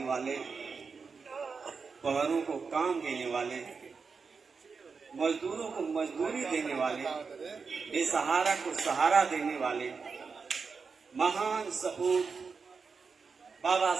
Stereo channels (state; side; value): quieter; left; 5.1 dB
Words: वाले, बहरों को काम देने वाले, मजदूरों को मजदूरी देने वाले, बेसहारा को सहारा देने वाले महान सपूत बाबा